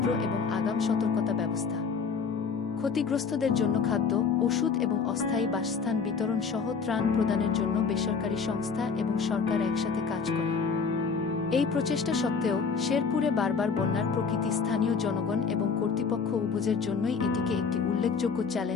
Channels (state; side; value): quieter; right; 5.5 dB